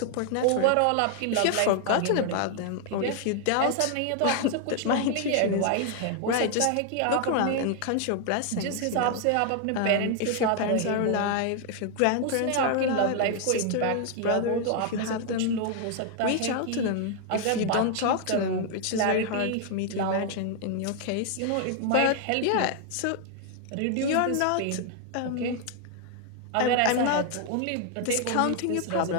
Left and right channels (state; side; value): different; both; correlation 0.00